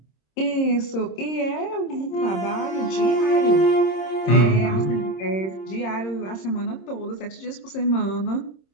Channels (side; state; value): right; late; 26 ms